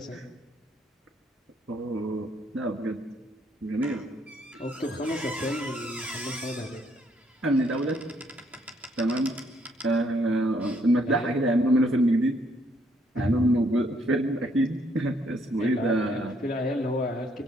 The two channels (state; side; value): normal; both; correlation 0.69